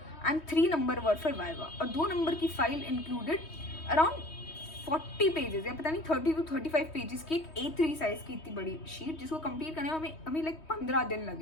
and 3 number were for viva. और 2 नंबर की फाइल इंक्लूडेड अराउंड 40 पेजेस या पता नहीं 30 to 35 पेजेस की एक A3 साइज की इतनी बड़ी शीट जिसको कंप्लीट करने में हमें लाइक 15 दिन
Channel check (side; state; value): right; late; 3.2 ms